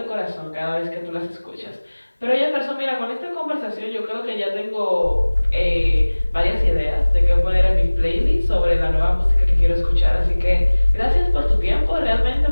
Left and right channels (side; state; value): both; inverted; correlation -1.00